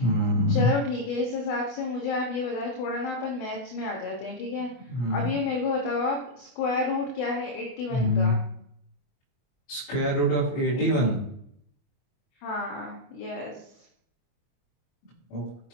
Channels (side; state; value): right; late; 25 ms